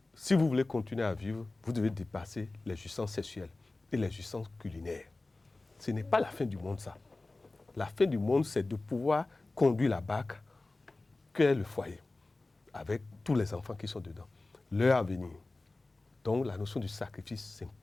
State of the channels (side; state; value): right; quieter; 3.2 dB